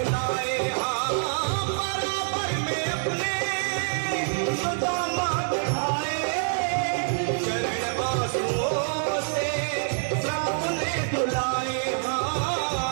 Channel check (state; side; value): silent; left; digital silence